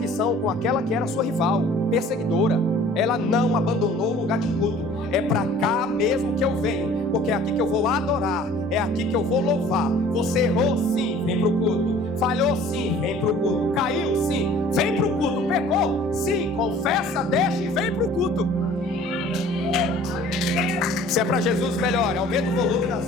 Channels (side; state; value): both; normal; correlation 0.50